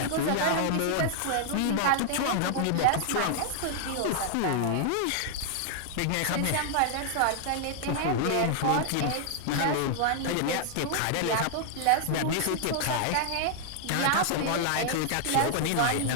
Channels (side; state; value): both; different; correlation 0.00